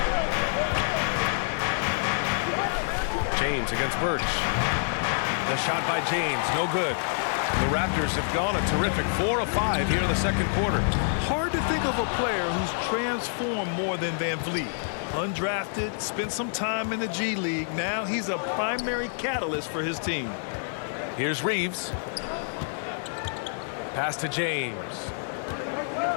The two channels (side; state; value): right; silent; 60 dB below the other